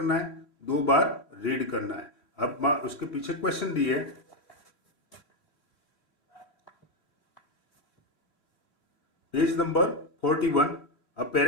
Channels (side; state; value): right; late; 3.4 ms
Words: है, 2 बार रीड करना है। अब उसके पीछे क्वेश्चन दिए, पेज नंबर 41। अब